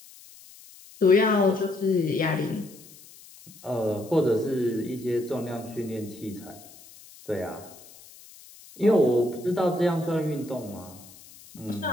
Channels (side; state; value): left; noise; hiss, 21 dB below the sound